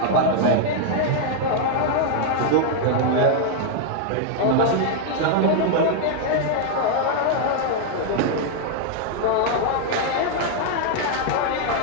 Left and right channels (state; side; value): different; both; correlation -0.01